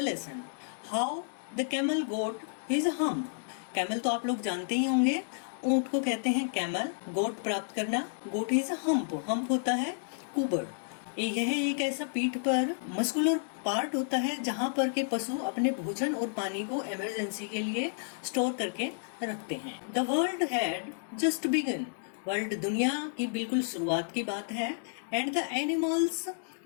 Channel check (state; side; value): silent; right; digital silence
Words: how the camel got his hump. Camel तो आप लोग जानते ही होंगे, ऊंट को कहते हैं कैमल। गोट प्राप्त करना, गोट इज हम्प। हम्प होता है कुबड़। यह एक ऐसा पीठ पर मस्कुलर पार्ट होता है जहां पर के पशु अपने भोजन और पानी को इमरजेंसी के लिए स्टोर करके रखते हैं। The world had just begun. World दुनिया की बिल्कुल शुरुआत की बात है। एंड द एनिमल्स,